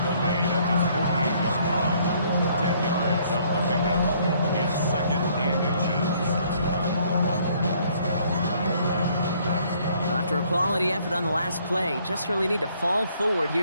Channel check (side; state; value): both; inverted; correlation -0.64